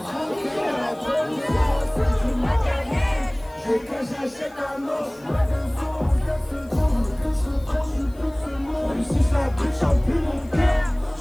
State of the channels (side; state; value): left; noise; hiss, 28 dB below the sound